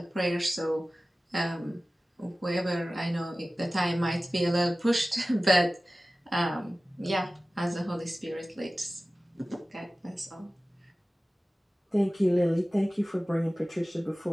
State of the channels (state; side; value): normal; both; correlation 0.97